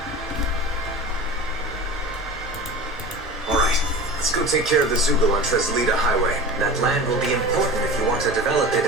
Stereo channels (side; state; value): both; normal; correlation 0.33